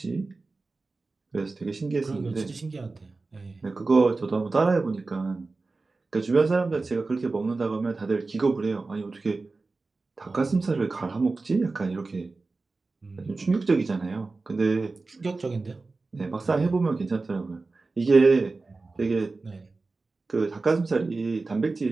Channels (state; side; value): quieter; left; 3.7 dB